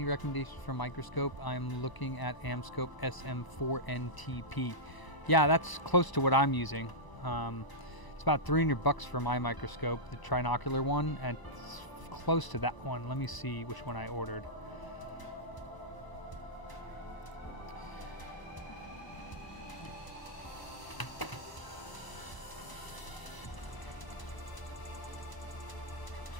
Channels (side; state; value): right; late; 1.0 ms